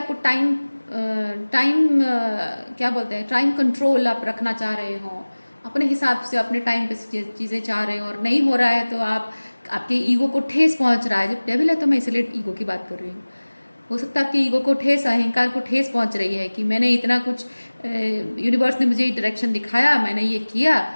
टाइम क्या बोलते हैं, टाइम कंट्रोल आप रखना चाह रहे हो, अपने हिसाब से अपने टाइम पे चीज़ें चाह रहे हो और नहीं हो रहा है तो आपके ईगो को ठेस पहुंच रहा है। जब डेविल है तो मैं इसलिए ईगो की बात कर रही हूँ। हो सकता है आपके ईगो को ठेस, अहंकार को ठेस पहुंच रही है कि मैंने इतना कुछ, यूनिवर्स ने मुझे डायरेक्शन दिखाया, मैंने ये किया,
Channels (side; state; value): both; inverted; correlation -1.00